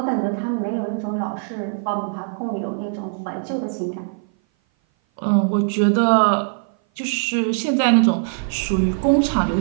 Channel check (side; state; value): left; silent; 57 dB below the other